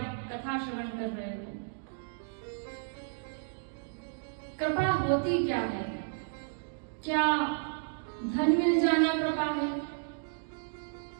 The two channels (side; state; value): left; silent; digital silence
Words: कथा श्रवण कर रहे हो। कृपा होती क्या है? क्या धन मिल जाना कृपा है?